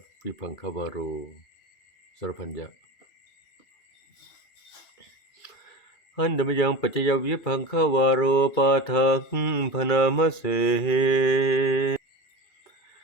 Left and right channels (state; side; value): late; right; 2.3 ms